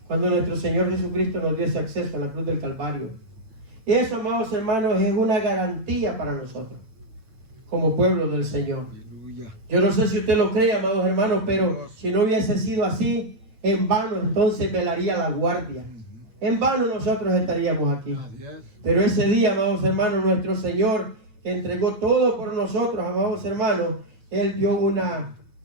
cuando nuestro Señor Jesucristo nos dio ese acceso a la cruz del Calvario. Eso, amados hermanos, es una garantía para nosotros, como pueblo del Señor. Aleluya. Yo no sé si usted lo cree, amados hermanos, pero si no hubiese sido así, en vano entonces velaría la guardia. En vano nosotros estaríamos aquí. Así es. Pero ese día, amados hermanos, nuestro Señor, que entregó todo por nosotros, amados hermanos, Él dio una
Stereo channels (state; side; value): late; left; 9.0 ms